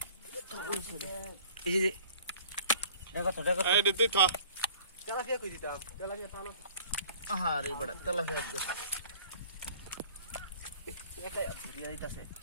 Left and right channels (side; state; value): both; inverted; correlation -0.51